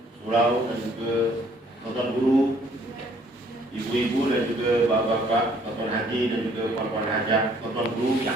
Surau dan juga tuan guru, ibu-ibu dan juga bapak-bapak, tuan haji dan juga puan-puan hajah, tuan guru yang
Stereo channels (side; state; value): both; normal; correlation 0.62